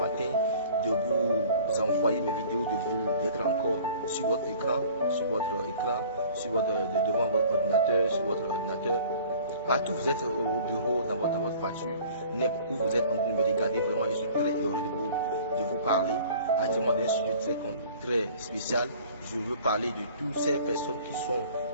de vous envoyer mes vidéos, d'être encore sur votre écran, devant votre ordinateur, sur votre ordinateur. Partout vous êtes au bureau, dans votre voiture, n'importe où vous êtes en train de me regarder, vraiment je suis très heureux de vous parler. Actuellement d'un sujet très spécial. Je veux parler de toutes ces personnes qui sont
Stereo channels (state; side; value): inverted; both; correlation -0.48